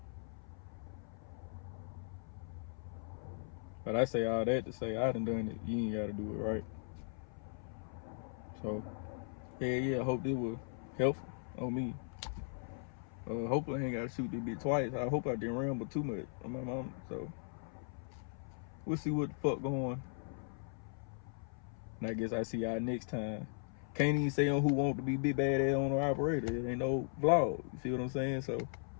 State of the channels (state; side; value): silent; right; 52 dB below the other